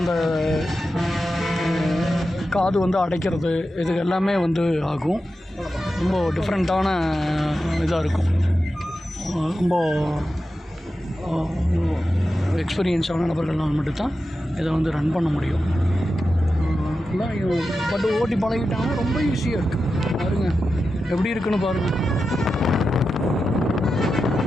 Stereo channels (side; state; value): both; normal; correlation 0.91